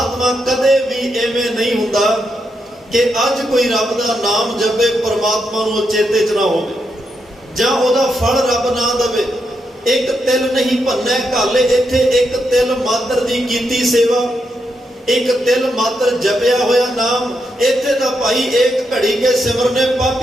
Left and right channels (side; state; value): both; normal; correlation 0.82